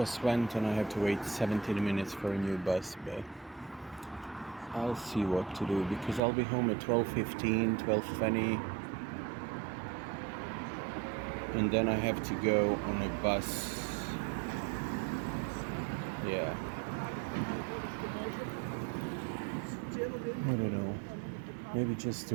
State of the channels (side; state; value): left; drops out; at 6.2 s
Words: went and I have to wait 17 minutes for a new bus, but I'll see what to do because I'll be home at 12:15, 12:20. And then I have to go on a bus. Yeah. I don't know. Maybe just to